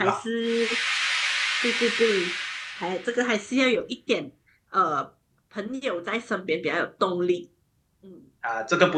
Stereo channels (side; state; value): both; identical; correlation 1.00